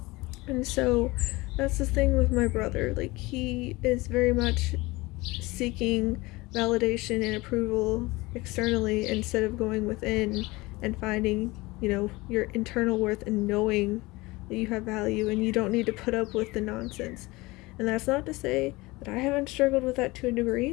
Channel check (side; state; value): right; quieter; 22.0 dB